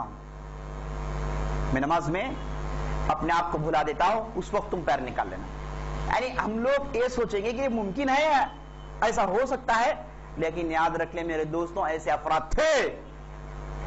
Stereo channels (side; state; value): both; identical; correlation 1.00